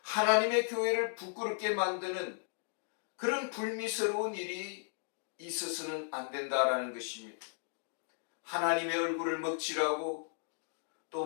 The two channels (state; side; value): silent; right; digital silence